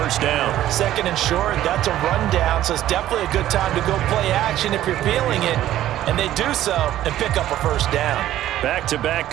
down. 2nd and short, that's a rundown, so it's definitely a good time to go play action if you're feeling it. And they do so and pick up a first down. Back-to-back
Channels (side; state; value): left; quieter; 13.2 dB